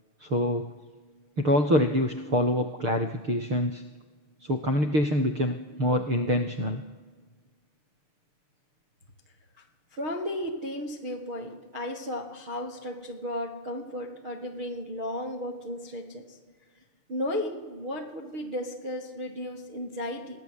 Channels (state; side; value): late; left; 6.7 ms